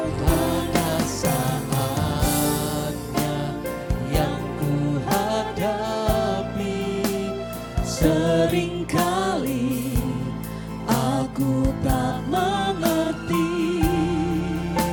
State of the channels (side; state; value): both; identical; correlation 1.00